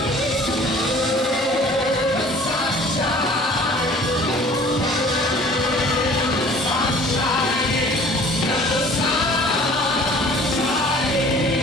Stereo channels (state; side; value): normal; both; correlation 0.49